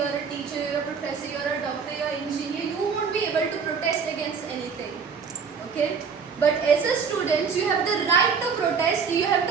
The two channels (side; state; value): left; quieter; 5.9 dB